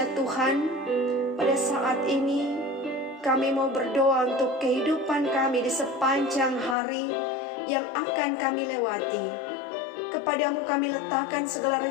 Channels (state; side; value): drops out; right; at 6.8 s